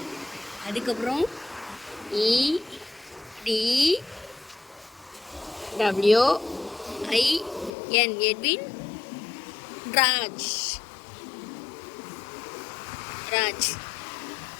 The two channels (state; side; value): drops out; right; at 7.7 s